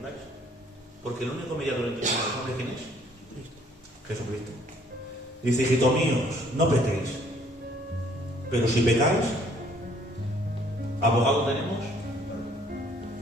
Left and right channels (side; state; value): both; normal; correlation 0.61